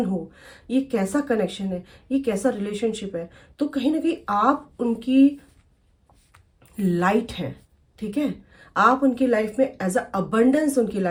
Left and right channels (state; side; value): identical; both; correlation 1.00